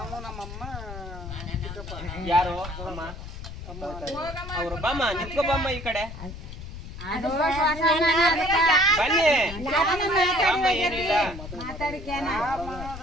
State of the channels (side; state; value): left; noise; rumble, 11 dB below the sound